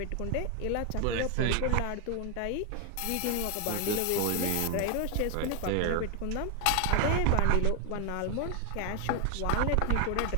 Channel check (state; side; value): different; both; correlation 0.01